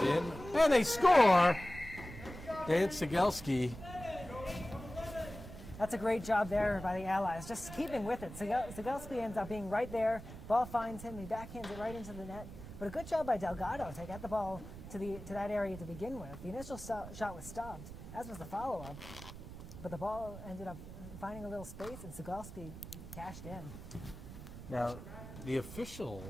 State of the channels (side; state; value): right; noise; rumble, 12 dB below the sound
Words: in, and they score! Dan Cegelski. That's a great job there by the Allies, just keeping with it. Cegelski ends up being right there. Ball finds him. He backhands it right into the net. But a good job by Delgado to get the ball to that area to begin with. The initial shot was stopped, as was the follow-up. But the ball ended up finding a little space, and Cegelski cashed in. Now, the official